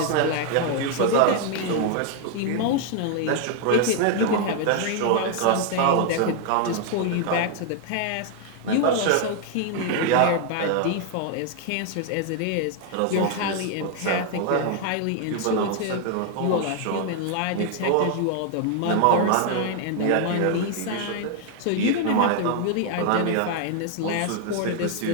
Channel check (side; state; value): both; different; correlation 0.00